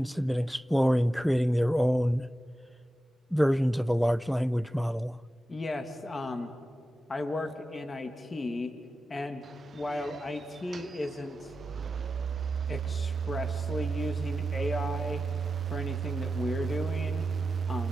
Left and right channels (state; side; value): normal; both; correlation 0.92